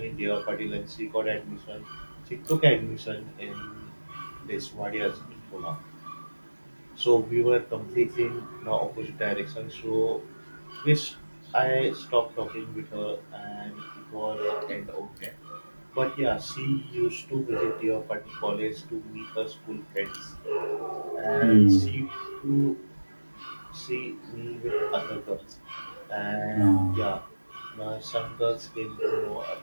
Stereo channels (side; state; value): both; inverted; correlation -1.00